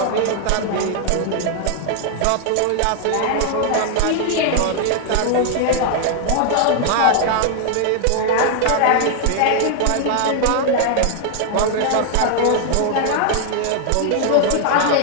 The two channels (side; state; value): both; different; correlation 0.00